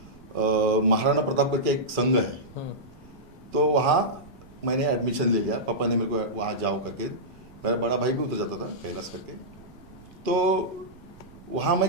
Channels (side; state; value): right; noise; rumble, 22 dB below the sound